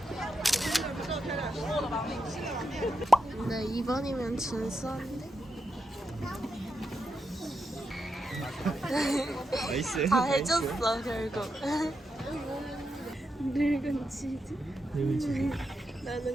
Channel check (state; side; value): normal; both; correlation 0.86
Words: 근데 2번이면 진수한데? 나이스. 다 해줬어 결국. 늙은 치즈? 늙은 치즈.